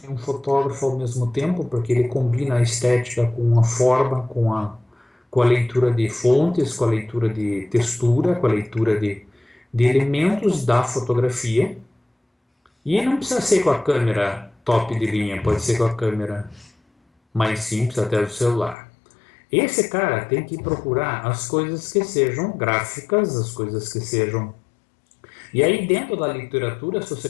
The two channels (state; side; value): drops out; right; at 18.8 s